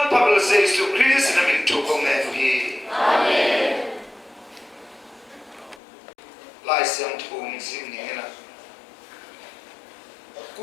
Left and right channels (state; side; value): drops out; right; at 5.8 s